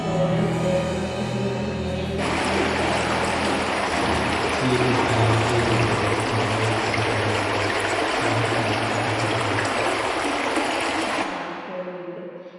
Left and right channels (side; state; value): both; identical; correlation 1.00